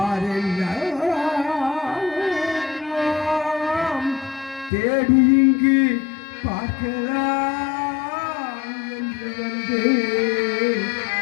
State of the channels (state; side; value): drops out; right; at 4.7 s